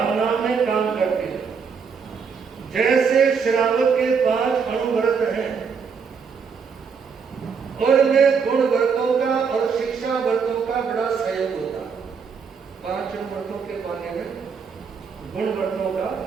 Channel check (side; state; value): left; quieter; 6.0 dB